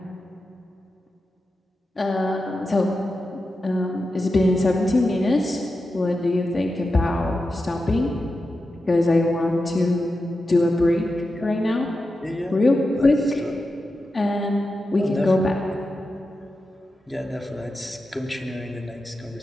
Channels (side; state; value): both; normal; correlation 0.90